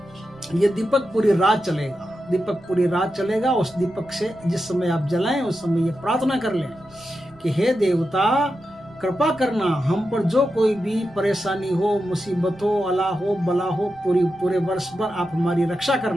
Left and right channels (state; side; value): noise; right; rumble, 27 dB below the sound